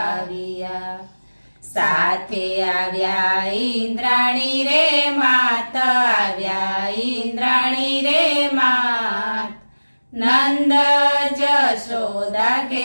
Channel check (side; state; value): both; inverted; correlation -1.00